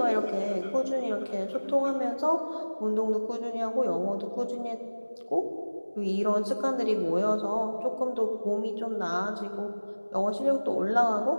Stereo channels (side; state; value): both; inverted; correlation -1.00